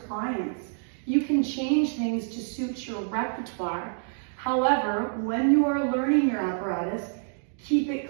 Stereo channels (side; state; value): left; silent; 60 dB below the other